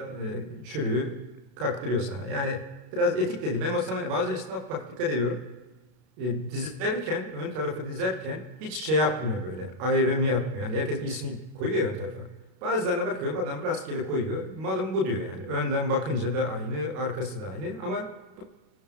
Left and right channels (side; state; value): left; late; 32 ms